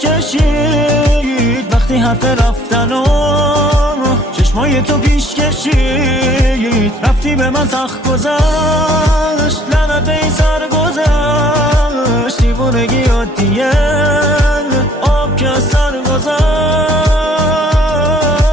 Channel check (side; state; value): both; normal; correlation 0.57